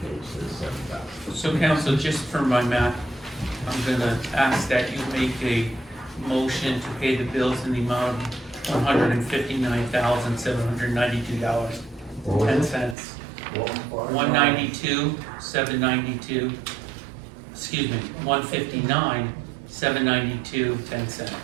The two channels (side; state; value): left; drops out; at 13.0 s